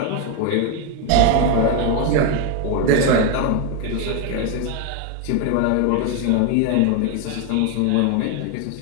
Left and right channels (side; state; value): both; different; correlation 0.01